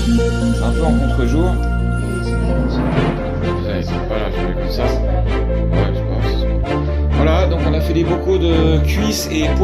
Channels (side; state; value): both; identical; correlation 1.00